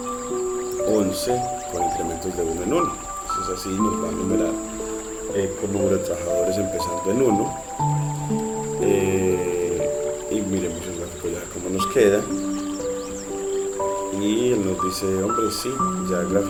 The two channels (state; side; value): identical; both; correlation 1.00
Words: 11 con incrementos de 1 en 1. Entonces así nos va a numerar con número de trabajadores empezando en 1. Y miremos el gráfico ya cómo nos queda. Y él nos dice, hombre, sí, ya